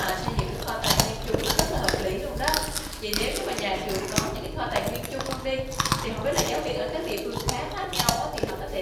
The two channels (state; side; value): identical; both; correlation 1.00